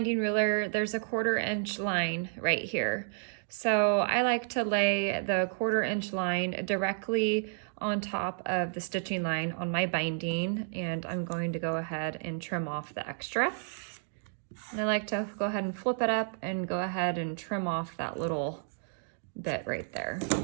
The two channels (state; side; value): silent; left; digital silence